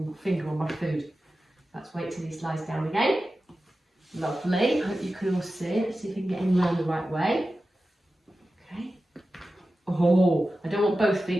finger on my food. Let's wait till he lies down again. Lovely. Hope you can all see it. Let's see if we can get him round the right way. Okay. Oh, I don't want both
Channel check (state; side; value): normal; both; correlation 0.94